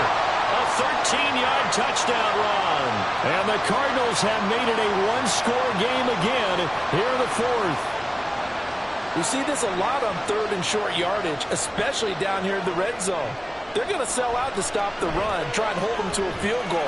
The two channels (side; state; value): both; identical; correlation 1.00